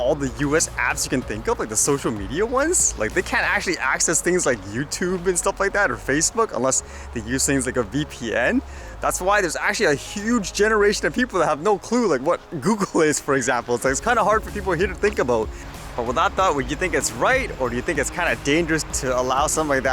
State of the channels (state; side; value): identical; both; correlation 1.00